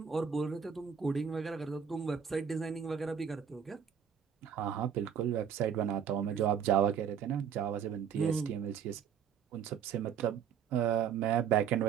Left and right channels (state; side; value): quieter; left; 7.7 dB